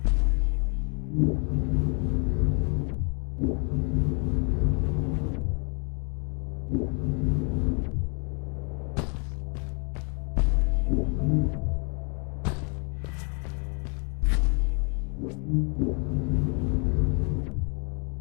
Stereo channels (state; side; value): quieter; right; 37.7 dB